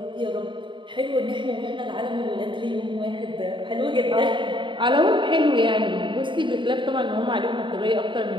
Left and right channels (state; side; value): late; left; 0.23 ms